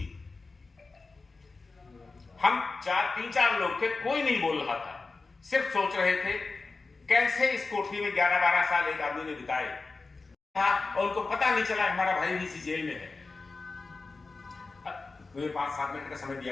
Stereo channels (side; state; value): right; quieter; 3.9 dB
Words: हम 3-4 लोग थे, कोई नहीं बोल रहा था, सिर्फ सोच रहे थे कैसे इस कोठरी में 11-12 साल एक आदमी ने बिताए और उनको पता नहीं चला हमारा भाई भी इसी जेल में है। मुझे 5-7 मिनट का समय